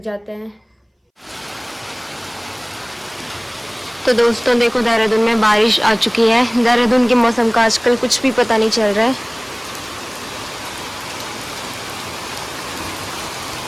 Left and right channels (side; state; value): both; identical; correlation 1.00